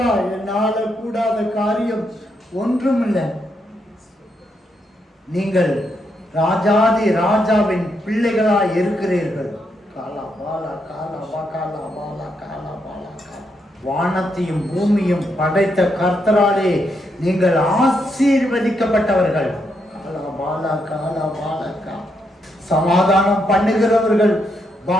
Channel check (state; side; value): normal; both; correlation 0.79